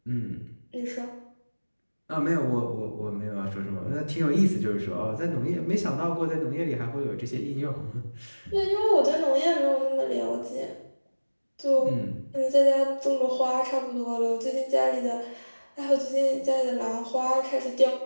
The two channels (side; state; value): both; inverted; correlation -1.00